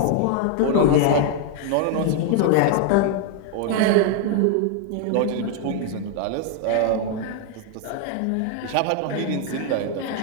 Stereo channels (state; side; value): different; both; correlation 0.00